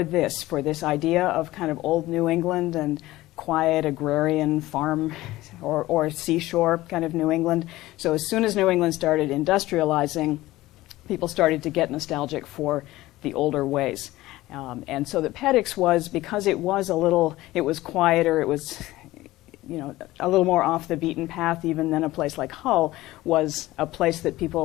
this idea of kind of old New England and quiet agrarian farm or seashore kind of New England. So as soon as New England started industrializing, people started to get nostalgic for the older ways. And so the Peddocks was, because it was quieter, it was a little more off the beaten path even than a place like Hull, was a place that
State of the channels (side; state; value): right; quieter; 17.3 dB